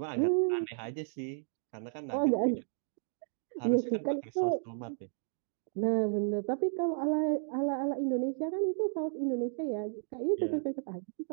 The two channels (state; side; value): silent; left; digital silence